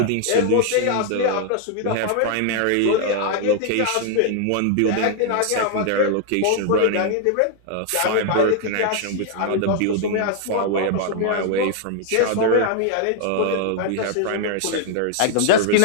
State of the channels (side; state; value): both; different; correlation 0.00